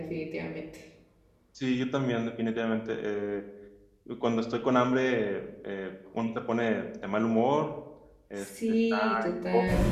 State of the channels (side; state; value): both; identical; correlation 1.00